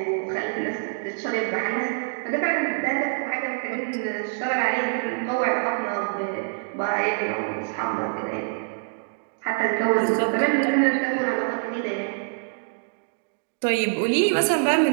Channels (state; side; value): silent; left; digital silence